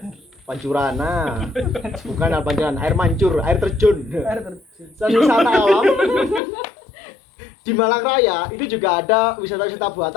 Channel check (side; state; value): right; drops out; at 6.4 s